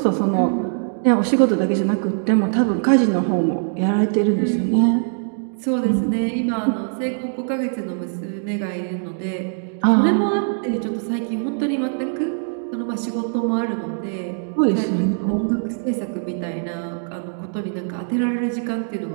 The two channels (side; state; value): left; silent; 64 dB below the other